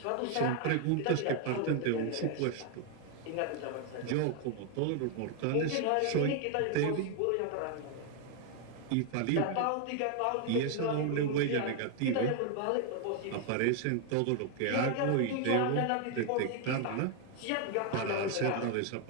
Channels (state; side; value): different; both; correlation 0.01